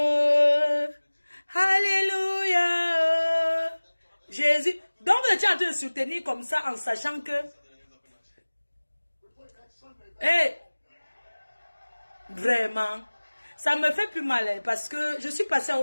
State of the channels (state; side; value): inverted; both; correlation -1.00